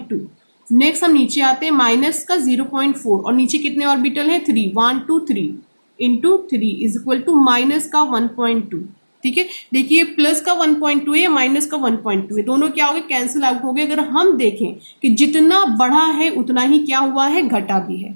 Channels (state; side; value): inverted; both; correlation -1.00